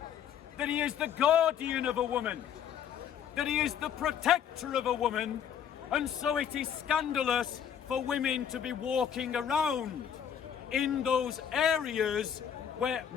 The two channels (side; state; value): right; quieter; 8.8 dB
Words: that he is the guardian of a woman, that he is the protector of a woman, and so it is scandalous for women to be walking around in those areas where